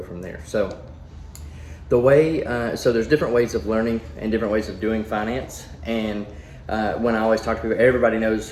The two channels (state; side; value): identical; both; correlation 1.00